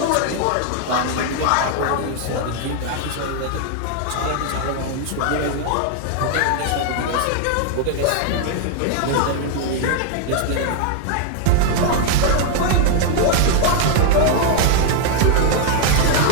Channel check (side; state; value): both; different; correlation 0.00